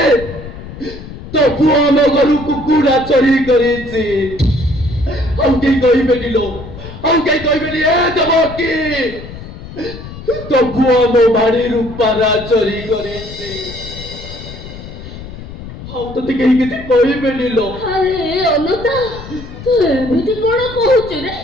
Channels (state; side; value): noise; left; rumble, 13 dB below the sound